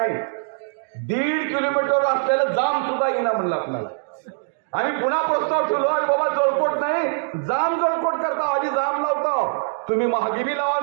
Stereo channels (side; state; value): left; silent; digital silence